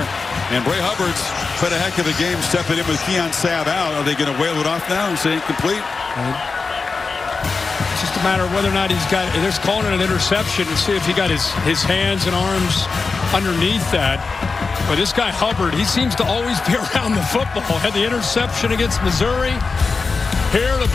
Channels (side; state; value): right; quieter; 4.4 dB